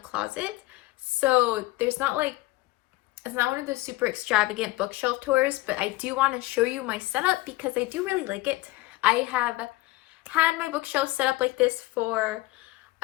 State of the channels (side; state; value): right; quieter; 19.5 dB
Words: So there's not like, it's not one of those super extravagant bookshelf tours, but I do want to show you my setup because I do really like it. I have had my bookshelf set up like this for